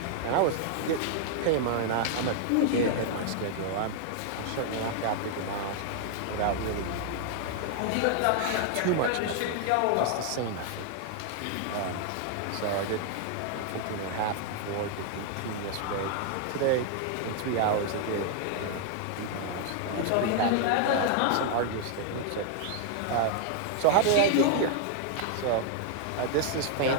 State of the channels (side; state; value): both; different; correlation 0.00